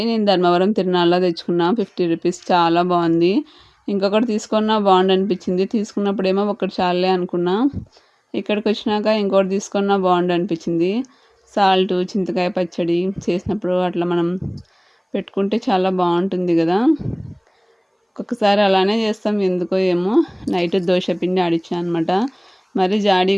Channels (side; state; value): both; identical; correlation 1.00